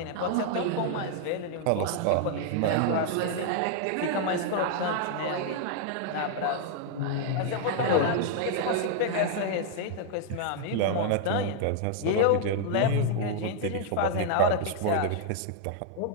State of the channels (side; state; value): both; different; correlation 0.00